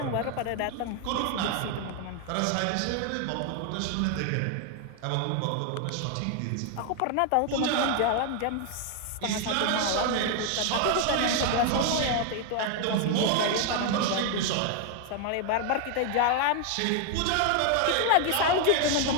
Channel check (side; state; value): both; different; correlation 0.00